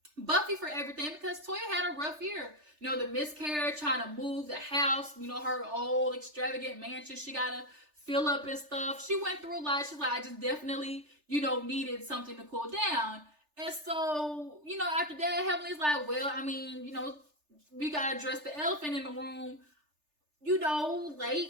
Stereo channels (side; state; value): left; late; 3.3 ms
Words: Buffy for everything because Toya had a rough year. You know, the miscarriage, trying to move the house, you know, her old extravagant mansion she got to fill up and stuff. She went through a lot. She's like, I just definitely, you know, needed something to cool down. And so, you know, after that, Heavenly's like, well, I mean, you know, we got to address the elephant in the room. You know,